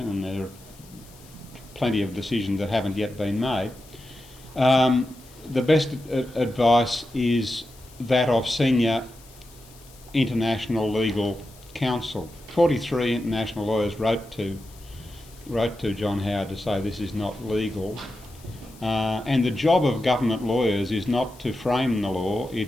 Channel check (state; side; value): noise; left; hiss, 24 dB below the sound